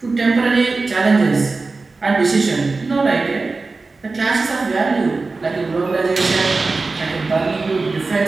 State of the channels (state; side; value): quieter; left; 3.8 dB